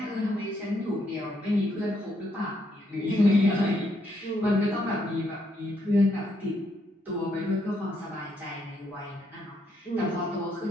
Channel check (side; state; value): both; normal; correlation 0.75